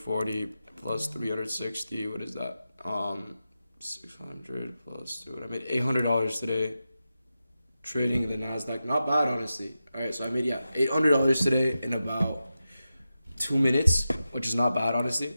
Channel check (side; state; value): both; inverted; correlation -0.91